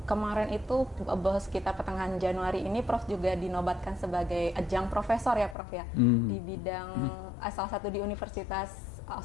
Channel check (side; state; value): right; drops out; at 5.6 s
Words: kemarin itu sekitar pertengahan Januari ini Prof juga dinobatkan sebagai adjunct profesor ya, Prof, ya, di bidang salah satu di Universitas